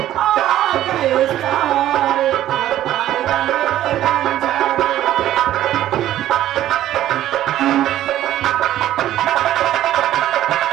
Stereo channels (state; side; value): quieter; left; 13.0 dB